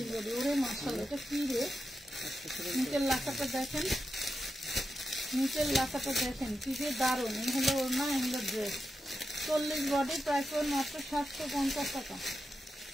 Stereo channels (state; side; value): normal; both; correlation 0.89